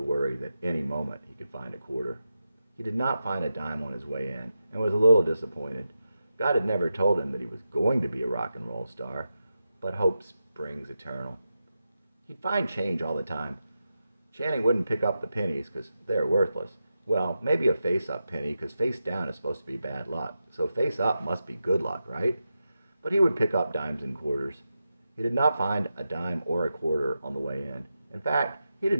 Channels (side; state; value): both; inverted; correlation -0.89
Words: worry that any moment he could find a quarter. He did not find a dime on his way in and was a little disappointed. God had never told him that he was going to be a rock and roll star, but hope springs eternal. He'd find change all the time. Channing wouldn't pick up the pennies because they're worthless. Well, maybe a face-up penny because face down is supposed to be bad luck, so face-up must be good luck, right? But he would pick up dimes and quarters. He did not find a dime or a quarter on the way in. In fact, he